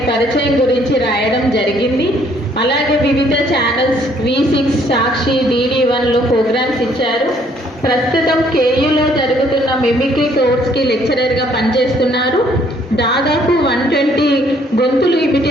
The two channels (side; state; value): both; normal; correlation 0.64